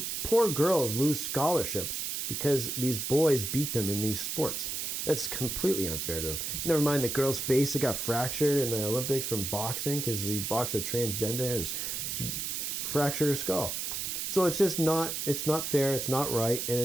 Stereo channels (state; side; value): noise; right; hiss, 3 dB below the sound